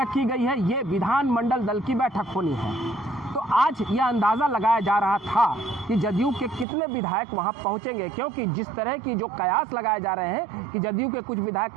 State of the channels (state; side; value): drops out; left; at 6.7 s